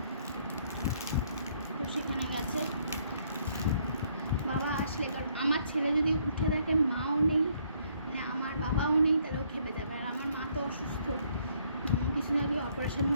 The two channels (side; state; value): both; inverted; correlation -0.67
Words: তো সেখানে গেছে। বাবা আসলে, কারণ আমার ছেলে যদি উঠে দেখে মাও নেই, মানে আমার বাবাও নেই, তাহলে ও খেপে যাবে। আর আমার মা তো অসুস্থ, কিছুদিন আগে অপারেশন